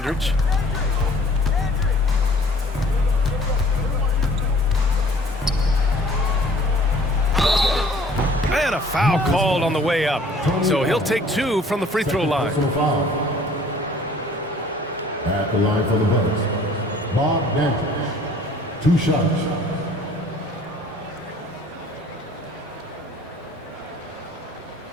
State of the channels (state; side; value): normal; both; correlation 0.53